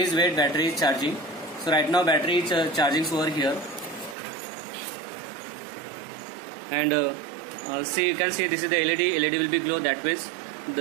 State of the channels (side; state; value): left; drops out; at 4.2 s